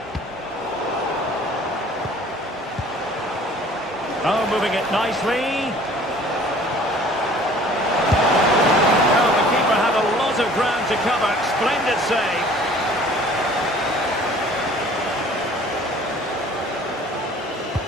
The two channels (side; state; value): both; normal; correlation 0.51